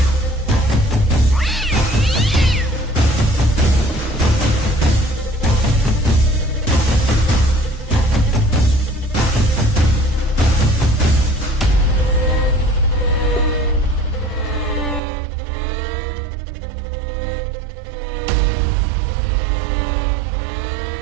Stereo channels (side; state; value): left; drops out; at 15.0 s